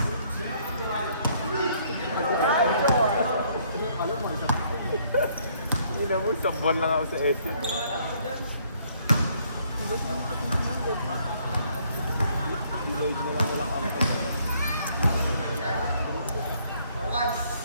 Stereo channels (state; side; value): inverted; both; correlation -0.65